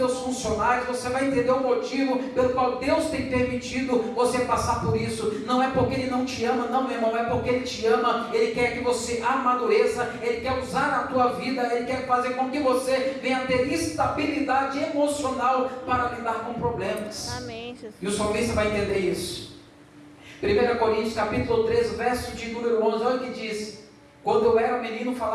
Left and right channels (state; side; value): identical; both; correlation 1.00